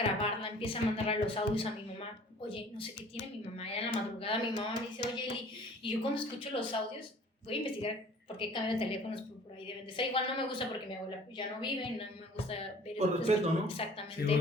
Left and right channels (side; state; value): both; normal; correlation 0.50